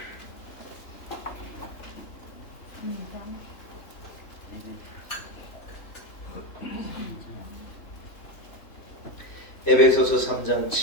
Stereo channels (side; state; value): right; late; 3.3 ms